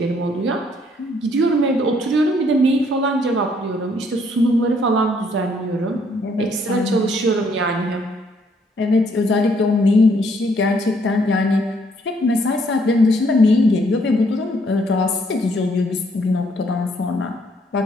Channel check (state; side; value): normal; both; correlation 0.68